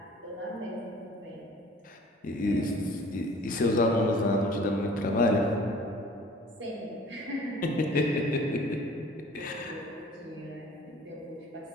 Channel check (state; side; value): normal; both; correlation 0.49